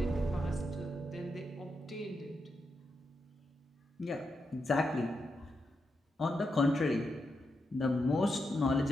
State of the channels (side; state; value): both; normal; correlation 0.85